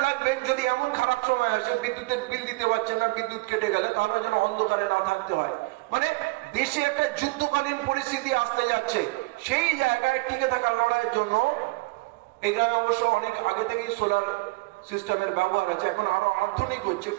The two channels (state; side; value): quieter; left; 23.9 dB